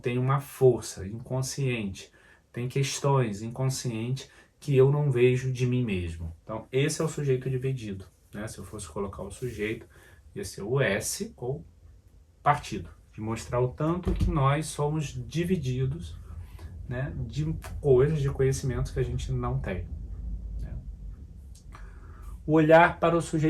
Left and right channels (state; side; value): identical; both; correlation 1.00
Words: uma força inconsciente, tem questões inconscientes que eu não vejo de mim mesmo. Então esse é o sujeito dividido, né? Se eu fosse colocar o sujeito, ia ser o S ou partido, de mostrar o tanto que nós somos divididos, né, de coisas, de conhecimentos que a gente não tem. Né? O olhar para o